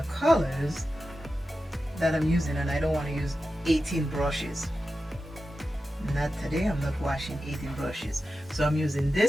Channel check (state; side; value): normal; both; correlation 0.92